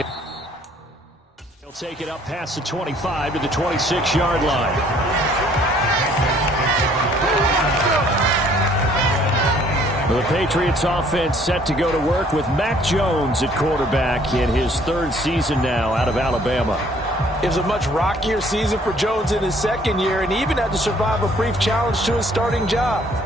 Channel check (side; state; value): both; normal; correlation 0.60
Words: he'll take it up past the 25 to the 26-yard line. The Patriots offense set to go to work with Mac Jones at quarterback in his third season now out of Alabama. It was a much rockier season for Jones in his second year, and he even had to survive a brief challenge to his starting job.